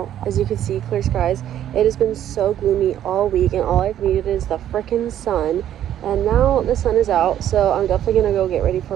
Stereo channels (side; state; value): left; quieter; 11.1 dB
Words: As you can see, clear skies. It has been so gloomy all week and all I've needed is the frickin' sun. And now the sun is out, so I'm definitely gonna go get ready for